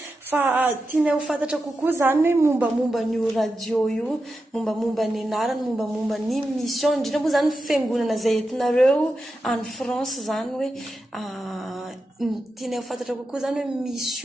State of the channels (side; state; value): both; normal; correlation 0.90